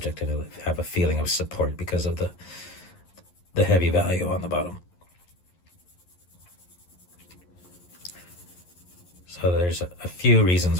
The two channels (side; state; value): right; late; 11 ms